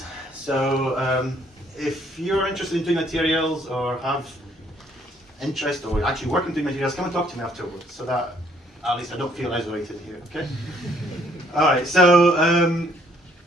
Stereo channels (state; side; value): normal; both; correlation 0.65